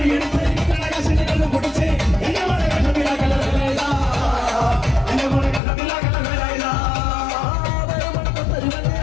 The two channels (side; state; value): right; drops out; at 5.6 s